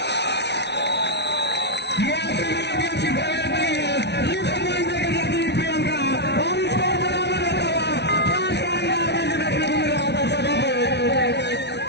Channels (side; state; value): right; late; 0.50 ms